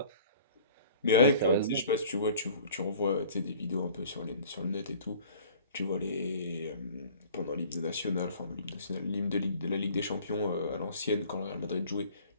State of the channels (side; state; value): both; inverted; correlation -0.49